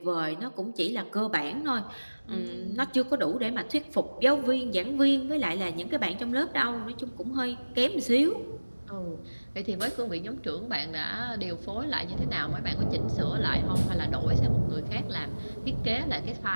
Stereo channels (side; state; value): both; inverted; correlation -1.00